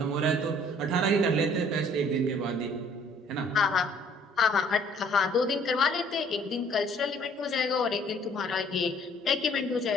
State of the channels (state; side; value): normal; both; correlation 0.58